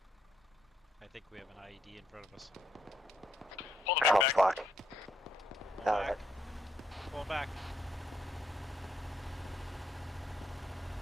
I think we have an IED in front of us. Pull the truck back. Fuck. Pull Alright. back. Pull back.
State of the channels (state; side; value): normal; both; correlation 0.76